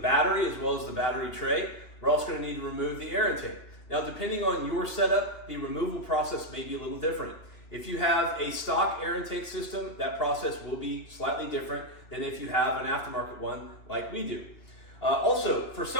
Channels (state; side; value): late; right; 2.6 ms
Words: as well as the battery tray. We're also going to need to remove the air intake. Now, depending on your setup, the removal process may be a little different. If you have a stock air intake system, that process will be slightly different than if you have an aftermarket one like we do. Also, for